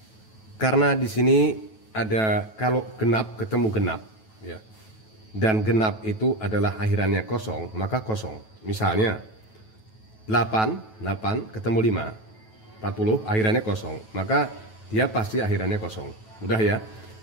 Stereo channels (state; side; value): late; right; 9.2 ms